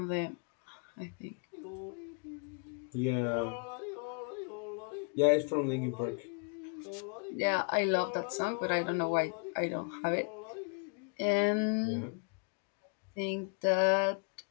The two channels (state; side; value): quieter; right; 39.0 dB